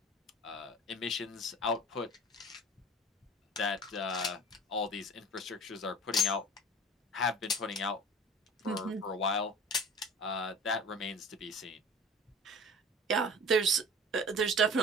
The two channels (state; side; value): normal; both; correlation 0.41